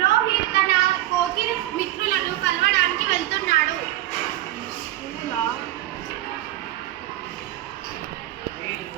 రోహిత్ తన కోకిల మిత్రులను కలవడానికి వెళ్తున్నాడు.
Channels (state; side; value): quieter; left; 15.0 dB